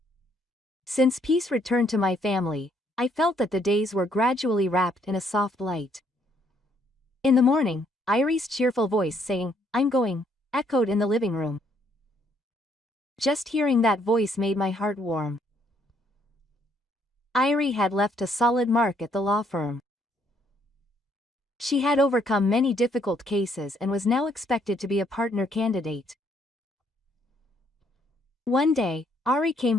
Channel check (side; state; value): both; normal; correlation 0.69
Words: Since peace returned to my family, I felt that the days were gradually wrapped in a soft light. In the morning, Ari's cheerful voice saying, "I'm going," echoed in the living room. Just hearing that voice made my heart warm. Ari had left a solid mark at the law firm. She had overcome many difficult cases and was now expected to be a partner candidate. One day, Ari came